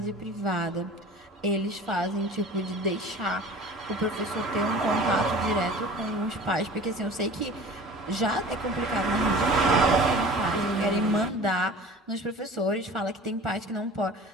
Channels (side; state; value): both; normal; correlation 0.42